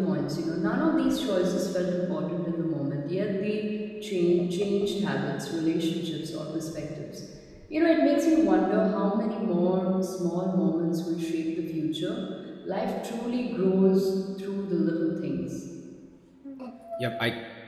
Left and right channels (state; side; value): identical; both; correlation 1.00